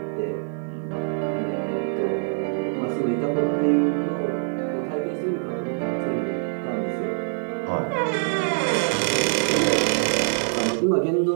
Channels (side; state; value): left; silent; digital silence